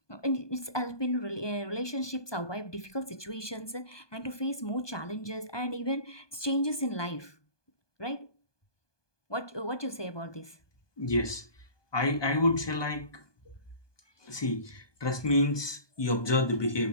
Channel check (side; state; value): right; late; 1.2 ms